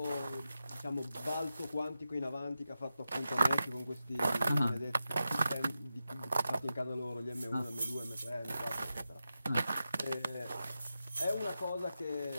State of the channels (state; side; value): inverted; both; correlation -0.90